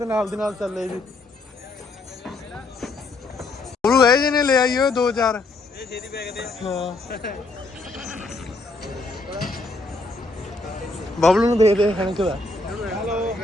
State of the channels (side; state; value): right; quieter; 3.1 dB